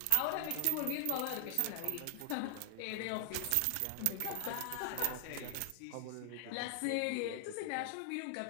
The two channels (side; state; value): both; different; correlation 0.00